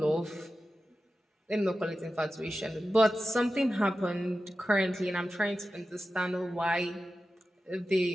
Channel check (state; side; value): normal; both; correlation 0.93